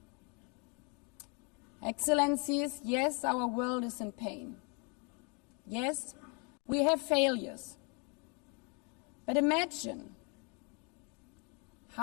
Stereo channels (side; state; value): right; quieter; 33.6 dB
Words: Excellencies, yes, our world is in pain. Yes, we have failures. But imagine